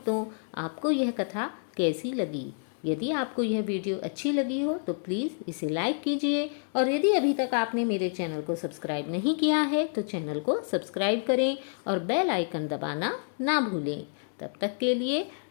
आपको यह कथा कैसी लगी? यदि आपको यह वीडियो अच्छी लगी हो तो प्लीज़ इसे लाइक कीजिए, और यदि अभी तक आपने मेरे चैनल को सब्सक्राइब नहीं किया है तो चैनल को सब्सक्राइब करें और बेल आइकन दबाना ना भूलें। तब तक के लिए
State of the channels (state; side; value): silent; right; 59 dB below the other